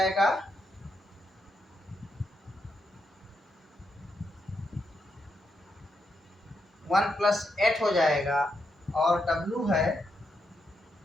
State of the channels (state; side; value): normal; both; correlation 0.82